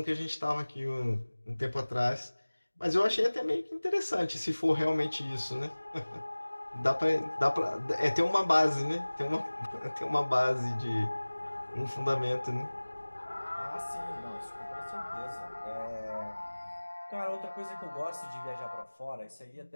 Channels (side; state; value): both; inverted; correlation -1.00